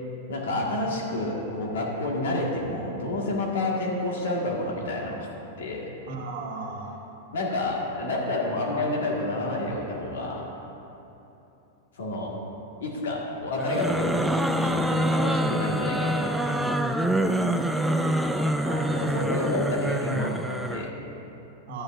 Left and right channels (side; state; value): both; normal; correlation 0.33